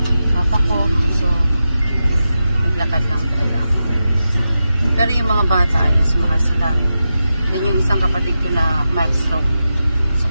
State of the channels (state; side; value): inverted; both; correlation -0.91